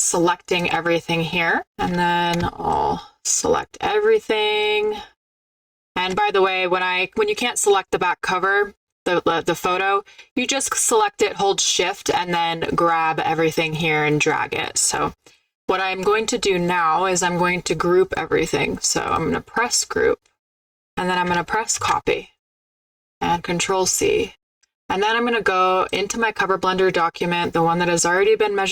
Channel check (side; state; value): both; identical; correlation 1.00